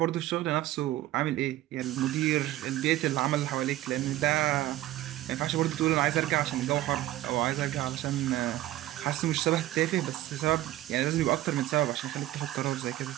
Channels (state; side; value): quieter; left; 15.1 dB